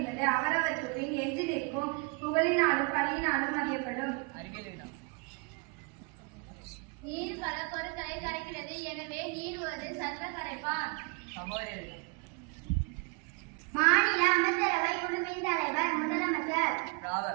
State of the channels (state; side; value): quieter; left; 31.8 dB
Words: அவரவற்றுக்கு எஞ்சி நிற்கும் புகழினாலும் பழியினாலும் அறியப்படும். நீர் பல பொருட்களை கரைக்கிறது, எனவே நீர் ஒரு சர்வ கரைப்பான். மாநில அமைச்சரவை குழுவின் தலைவர் முதலமைச்சர்.